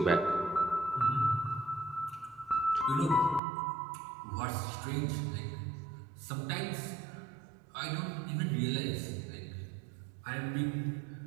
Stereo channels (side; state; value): left; drops out; at 3.4 s